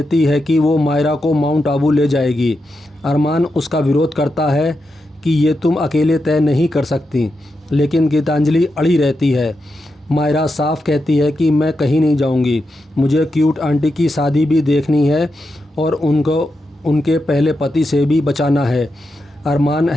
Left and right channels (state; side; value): normal; both; correlation 0.87